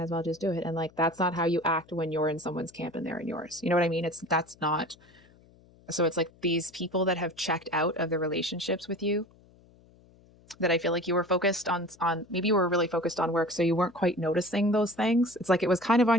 as well just do it. And like that's not how you act when you're in someone's camp and they're in yours. You know what I mean? That's not. So it's like these people that have checked out of the relationships with you, that I feel like you were focused on maybe you were really focused on work, so you weren't quite noticing those things. It's like it was kind of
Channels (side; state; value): left; noise; hum, 28 dB below the sound